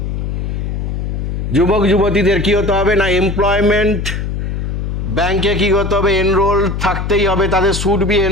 যুবক যুবতীদের কী হতে হবে না এমপ্লয়মেন্ট ব্যাংকে কী করতে হবে, এনরোল্ড থাকতেই হবে, তাদের should be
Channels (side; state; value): left; noise; hum, 3 dB below the sound